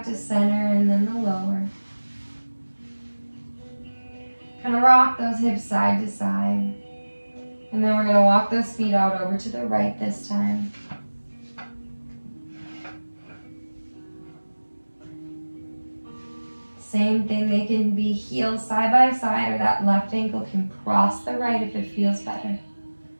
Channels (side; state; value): both; inverted; correlation -1.00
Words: to center, and then the lower. Kind of rock those hips side to side. And then we're going to walk those feet out over to the right this time. Same thing, they can be heels side by side, or that left ankle can cross the right if it feels better.